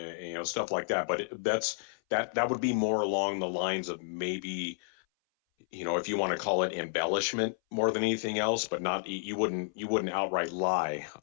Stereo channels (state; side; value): silent; right; 57 dB below the other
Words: stuff like that. But that would be more along the lines of maybe, if you want to call it embellishment more than anything else, but not, you wouldn't outright lie